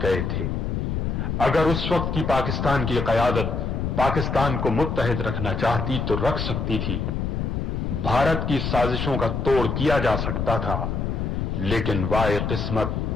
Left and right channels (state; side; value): noise; left; rumble, 1 dB below the sound